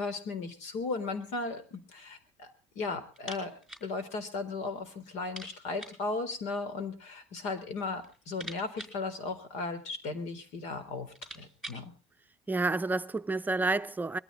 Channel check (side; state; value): both; normal; correlation 0.46